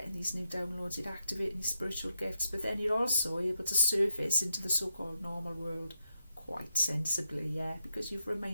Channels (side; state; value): both; inverted; correlation -0.83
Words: getting these new downloads, you're activating these spiritual gifts, but then you're also able to surface into the so-called normal world quite sensibly, because you've